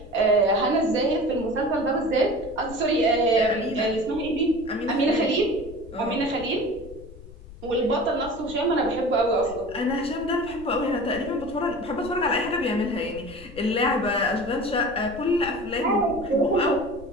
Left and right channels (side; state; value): left; noise; rumble, 17 dB below the sound